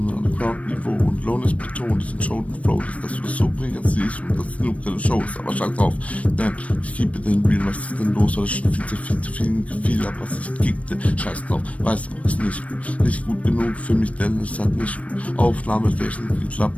an Ground-Niveau und Lohn ist betont, diesen Show und Flow, dass du das so bringen siehst und das genug deine Show ist, aber scheiß drauf, denn ich gebe den Real, was ist denn los, weil ich schon viel zu viel Gefühl hab, was ich kickte, scheiß drauf, weiß auch, ist nicht gut genug für mich, denn es hat nicht gut Aufnahmeflächen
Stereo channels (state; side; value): late; right; 0.065 ms